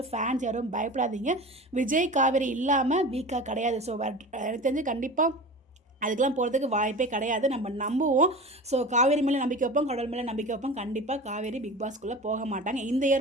ஃபேன்ஸ் யாரும் பயப்படாதீங்க. விஜய் காவேரி இல்லாமல் வீக்காக கிடையாது. ஸோ எனக்கு தெரிஞ்சு கண்டிப்பாக அதுக்கெலாம் போகிறதுக்கு வாய்ப்பே கிடையாது. நம்ம நம்புவோம். ஸோ காவேரி மேலே நம்பிக்கை வைப்போம், கடவுள் மேலே நம்பிக்கை வைப்போம். கண்டிப்பாக காவேரி பிக் பாஸ்க்குள்ளே போக மாட்டாங்க, இந்த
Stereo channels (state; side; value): normal; both; correlation 0.34